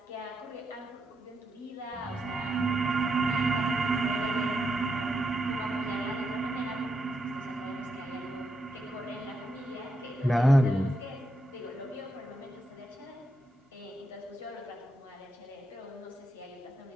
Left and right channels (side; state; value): both; normal; correlation 0.83